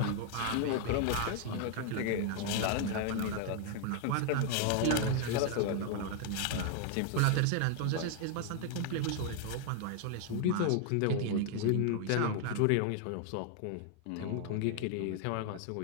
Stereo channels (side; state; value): both; different; correlation 0.00